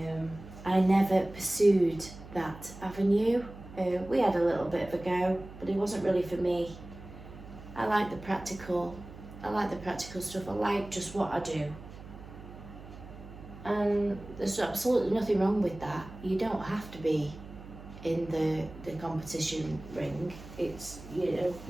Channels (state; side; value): noise; right; hum, 15 dB below the sound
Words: I never pursued that avenue. We had a little bit of a go, but it wasn't really for me. I like the practical stuff. I like just what I do. And there's absolutely nothing wrong with that. You don't have to be in the competition ring. It's, you